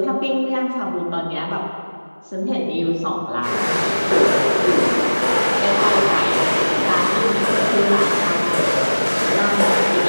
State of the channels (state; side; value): inverted; both; correlation -1.00